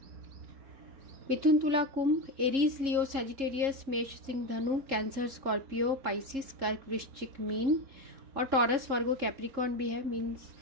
मिथुन तुला कुंभ, एरीज लियो सैजिटेरियस, मेष सिंह धनु, कैंसर स्कॉर्पियो, पाइसिस कर्क वृश्चिक मीन, और टॉरस वर्गो कैप्रिकॉर्न भी है, मीन्स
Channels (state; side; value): late; left; 3.7 ms